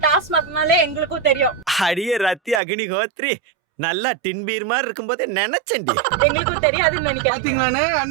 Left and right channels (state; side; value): drops out; left; at 2.6 s